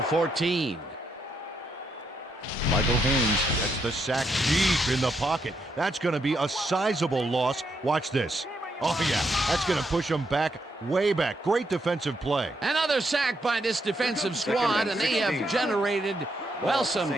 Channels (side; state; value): both; normal; correlation 0.78